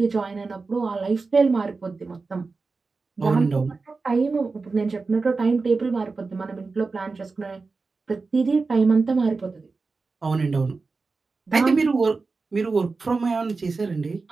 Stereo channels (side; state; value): left; quieter; 4.1 dB